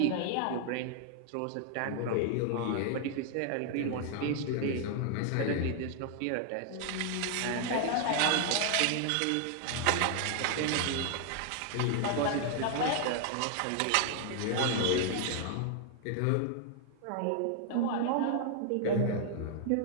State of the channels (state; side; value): different; both; correlation 0.00